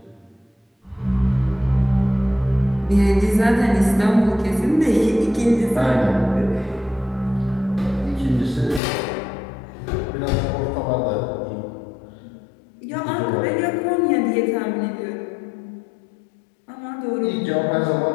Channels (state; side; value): drops out; right; at 8.8 s